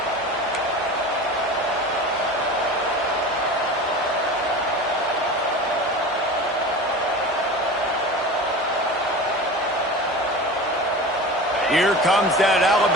Here comes that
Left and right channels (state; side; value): normal; both; correlation 0.33